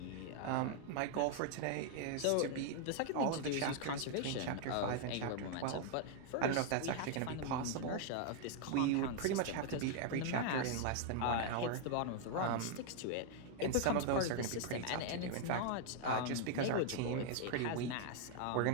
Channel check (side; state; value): both; different; correlation 0.00